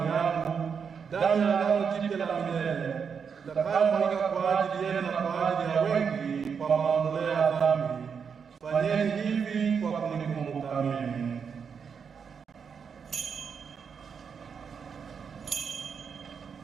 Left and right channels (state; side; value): quieter; left; 6.4 dB